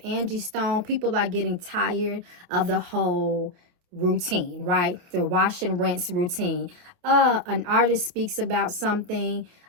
Angie Stone, people are getting tired of the whole routine, right? The wash and rinse routine. An artist speaks about something,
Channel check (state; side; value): late; left; 29 ms